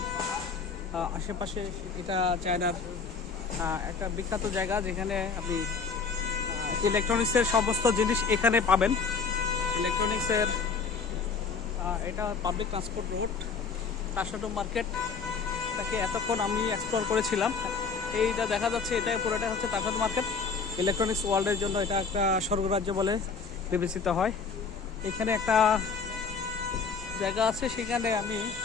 আশেপাশে এটা চায়নার একটা বিখ্যাত জায়গা, যেখানে আপনি ইলেকট্রনিক্সের সমস্ত জিনিস এখানে পাবেন। ইলেকট্রনিক্সের এটা পাবলিক ট্রান্সপোর্ট রোড, তাসাতো মার্কেট। এটাকে এতক্ষণ আমি এক্সপ্লোর করেছিলাম। এইটা দেখা যাচ্ছে, এটাই পুরোটা হচ্ছে তাসাতো মার্কেট। ইলেকট্রনিক্স ওয়ার্ল্ডের জন্য এটা একটা স্বর্গরাজ্য বলে বিবেচিত হয়। এখানে একটা জায়গা আছে, সেখানে আমি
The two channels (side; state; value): right; quieter; 5.2 dB